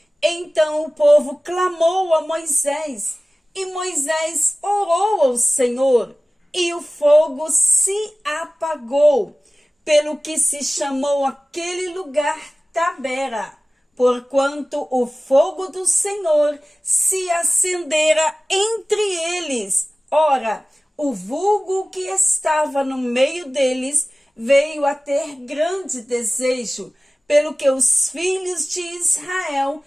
Então o povo clamou a Moisés, e Moisés orou ao Senhor, e o fogo se apagou, pelo que se chamou aquele lugar Tabera, porquanto o fogo do Senhor se acendera entre eles. Ora, o vulgo que estava no meio deles veio a ter grande desejo, pelo que os filhos de Israel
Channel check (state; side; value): normal; both; correlation 0.97